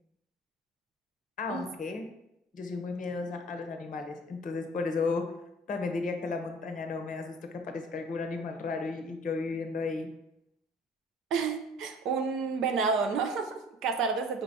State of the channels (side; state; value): both; normal; correlation 0.47